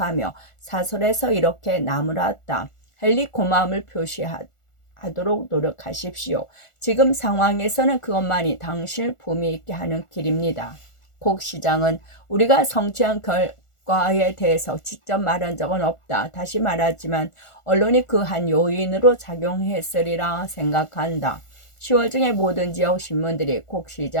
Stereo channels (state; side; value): late; right; 1.4 ms